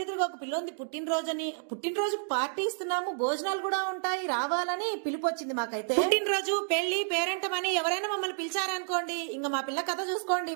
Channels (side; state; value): left; silent; digital silence